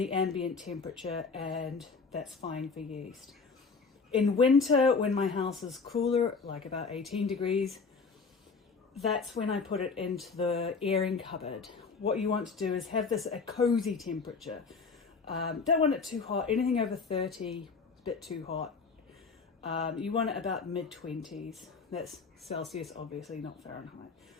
ambient temperature, and that's fine for yeast. In winter, when my house is cooler, like about 18 degrees, that's when I put it into the airing cupboard. What you want to do is have this at a cozy temperature. Don't want it too hot. Anything over 30 is a bit too hot. You want it about mid-20s. That's Celsius, obviously, not Fahrenheit.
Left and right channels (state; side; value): quieter; right; 4.8 dB